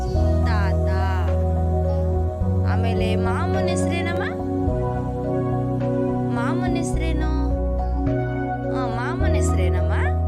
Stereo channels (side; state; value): both; identical; correlation 1.00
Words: ತಾತ. ಆಮೇಲೆ ಮಾಮನ ಹೆಸರೇನಮ್ಮ? ಮಾಮನ ಹೆಸರೇನು? ಮಾಮನ ಹೆಸರೇನಮ್ಮ?